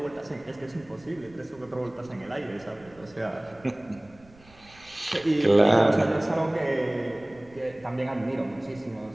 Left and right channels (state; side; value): noise; right; rumble, 26 dB below the sound